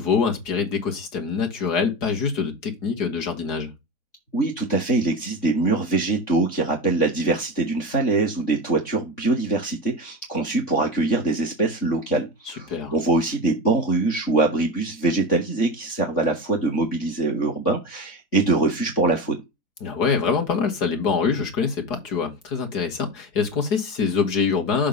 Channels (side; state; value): right; late; 4.8 ms